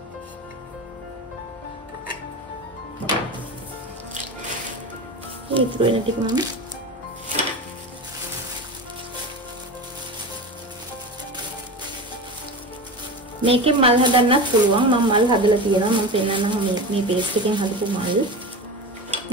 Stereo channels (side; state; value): both; normal; correlation 0.27